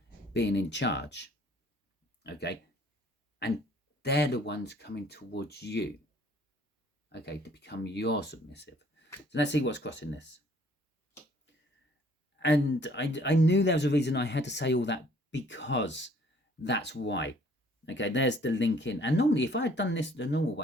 being in charge. Okay, and they're the ones coming towards you, okay, to become your submissive. So let's see what's crossing this. And I knew there was a reason I had to say all that, because that's why. Okay, there's the link in. And normally, if I had done this the normal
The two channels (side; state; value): both; normal; correlation 0.58